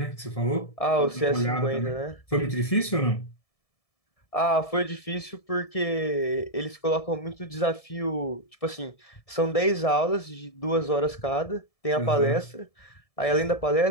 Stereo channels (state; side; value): late; right; 1.7 ms